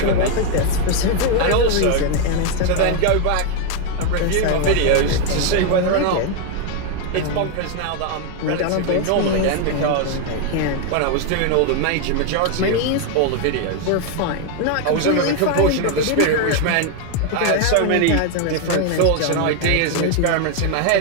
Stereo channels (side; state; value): both; different; correlation 0.01